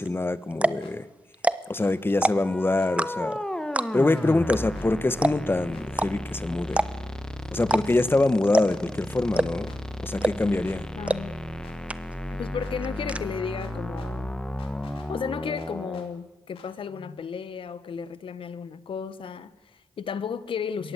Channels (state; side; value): normal; both; correlation 0.89